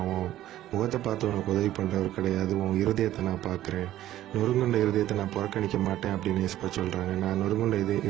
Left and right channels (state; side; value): quieter; left; 13.5 dB